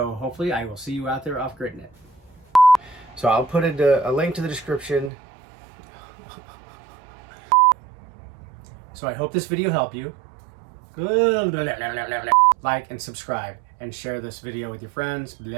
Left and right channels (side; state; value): left; drops out; at 5.1 s